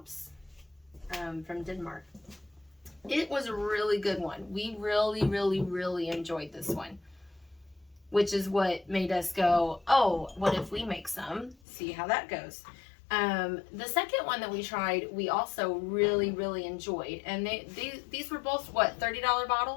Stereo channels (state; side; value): drops out; right; at 11.6 s